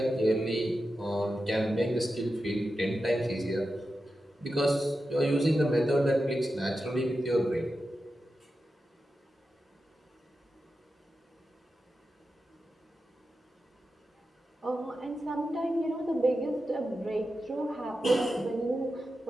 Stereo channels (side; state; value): both; normal; correlation 0.91